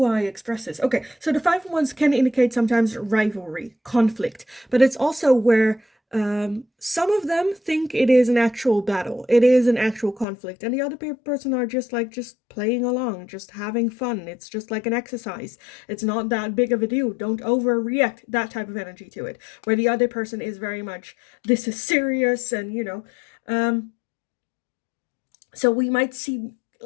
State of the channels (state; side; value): drops out; right; at 10.2 s